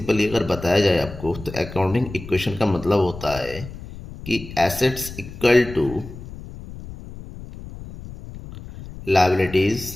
अगर बताया जाए आपको तो अकाउंटिंग इक्वेशन का मतलब होता है कि assets equal to liabilities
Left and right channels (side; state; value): left; noise; rumble, 13 dB below the sound